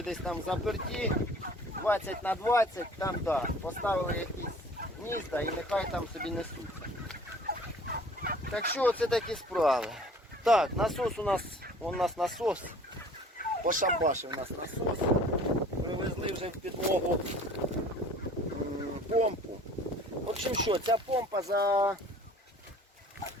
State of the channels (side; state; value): both; normal; correlation 0.50